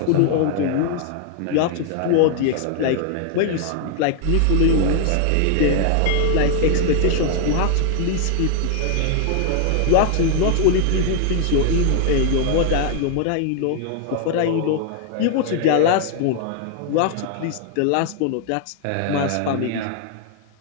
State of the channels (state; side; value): different; both; correlation 0.00